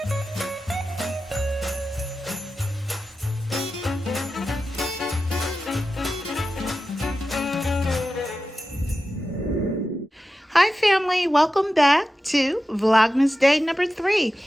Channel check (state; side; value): normal; both; correlation 0.93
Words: Hi family, welcome back to Vlogmas day number 3.